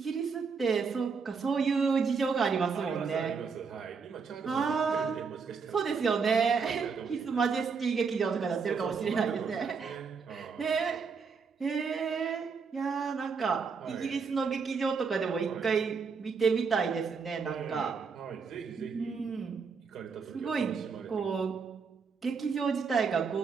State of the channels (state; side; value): quieter; left; 5.5 dB